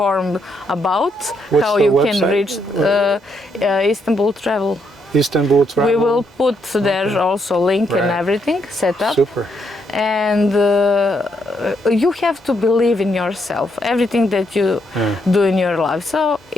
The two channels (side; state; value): both; normal; correlation 0.76